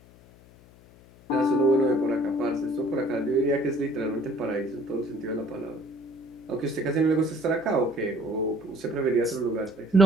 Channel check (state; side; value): noise; left; hum, 25 dB below the sound